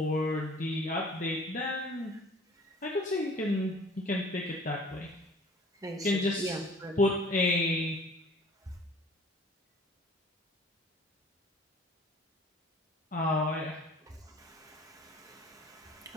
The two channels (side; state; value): both; normal; correlation 0.49